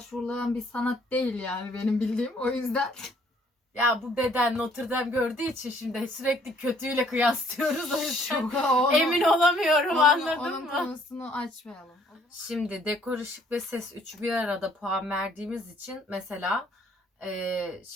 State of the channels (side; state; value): both; normal; correlation 0.62